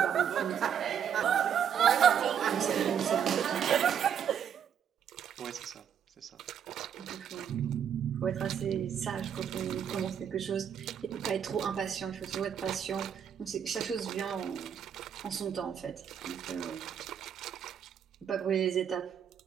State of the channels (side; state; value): left; quieter; 8.4 dB